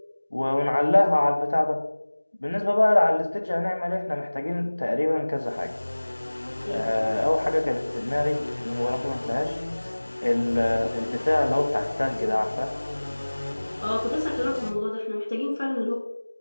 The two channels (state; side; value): inverted; both; correlation -1.00